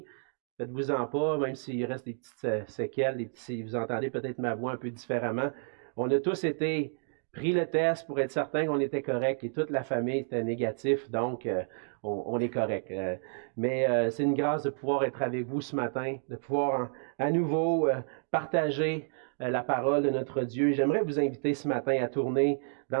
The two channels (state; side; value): silent; left; 58 dB below the other